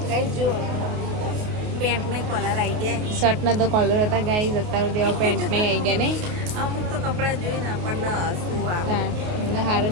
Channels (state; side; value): late; left; 28 ms